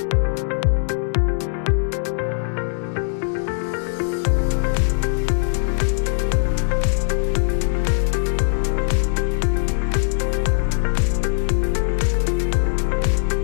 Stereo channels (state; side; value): silent; right; digital silence